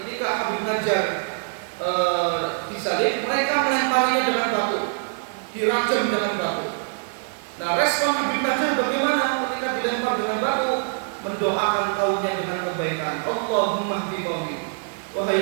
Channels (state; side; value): silent; left; 63 dB below the other